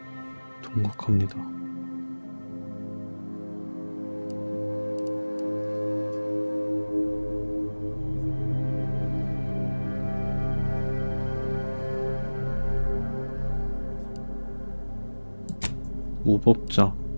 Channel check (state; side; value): inverted; both; correlation -1.00